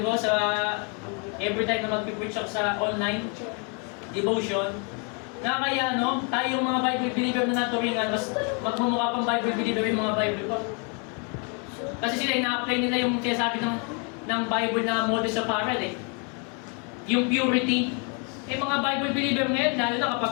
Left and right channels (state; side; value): quieter; right; 36.5 dB